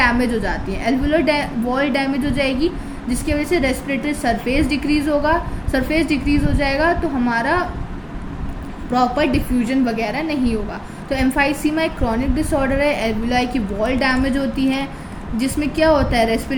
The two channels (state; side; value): identical; both; correlation 1.00